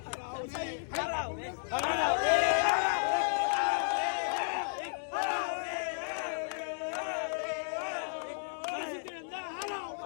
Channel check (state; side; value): silent; right; digital silence